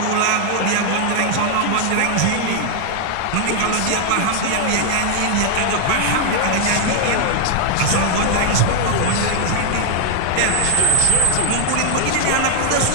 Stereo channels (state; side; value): different; both; correlation 0.00